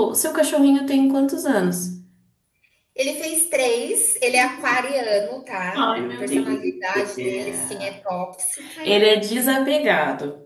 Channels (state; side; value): identical; both; correlation 1.00